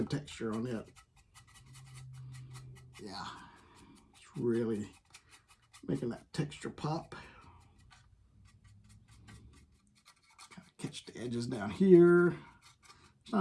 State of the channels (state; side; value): identical; both; correlation 1.00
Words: texture on it. Yeah, it's really making that texture pop. Kind of catch the edges down here. There's